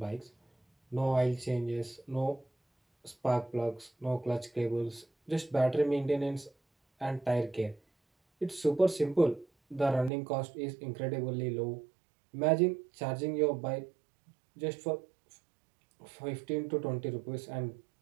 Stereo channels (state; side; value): drops out; left; at 10.1 s